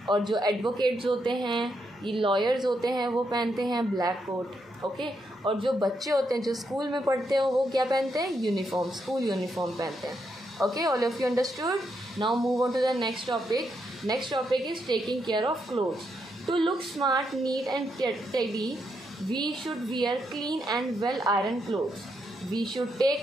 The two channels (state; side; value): normal; both; correlation 0.80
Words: और जो एडवोकेट्स होते हैं, ये लॉयर्स होते हैं, वो पहनते हैं ब्लैक कोट. ओके, और जो बच्चे होते हैं जो स्कूल में पढ़ते हैं वो क्या पहनते हैं? यूनिफॉर्म, स्कूल यूनिफॉर्म पहनते हैं. Okay, all of you understood. Now move on to the next topic. Next topic is taking care of clothes. To look smart, neat and tidy, we should wear clean and well iron clothes. We should take